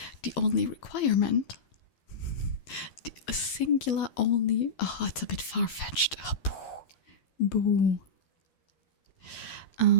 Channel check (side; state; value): right; late; 12 ms